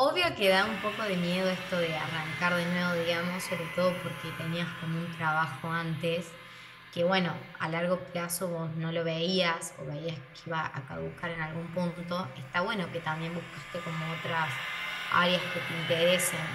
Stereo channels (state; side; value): identical; both; correlation 1.00